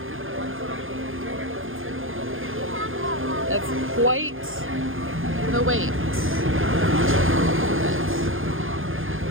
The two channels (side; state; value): left; late; 0.59 ms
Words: That's quite the wait.